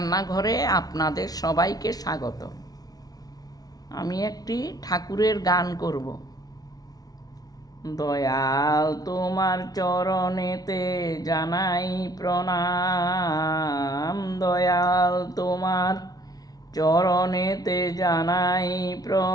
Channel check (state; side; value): late; right; 0.18 ms